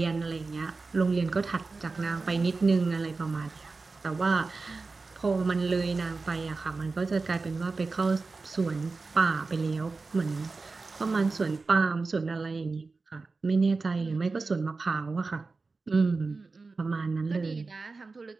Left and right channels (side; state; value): left; quieter; 3.9 dB